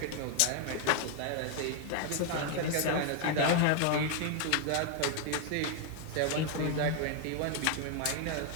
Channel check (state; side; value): different; both; correlation 0.00